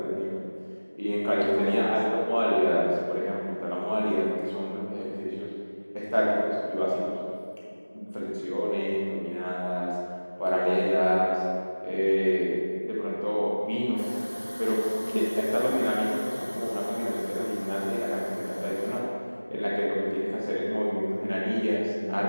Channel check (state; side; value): inverted; both; correlation -1.00